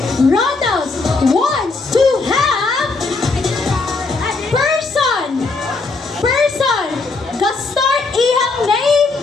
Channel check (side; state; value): right; quieter; 3.8 dB